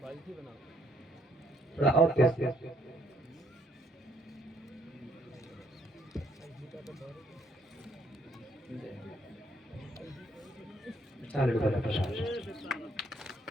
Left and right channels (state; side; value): normal; both; correlation 0.68